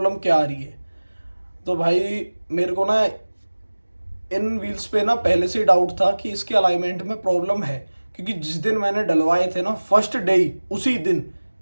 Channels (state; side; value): inverted; both; correlation -1.00